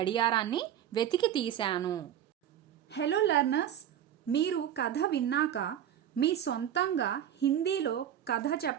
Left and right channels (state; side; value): quieter; left; 10.4 dB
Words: వెతికి తీశాను. హలో లర్నర్స్, మీరు కథ విన్నాక మీ సొంతంగా హిందీలో కథ